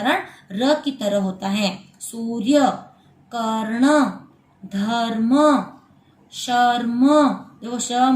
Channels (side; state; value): both; identical; correlation 1.00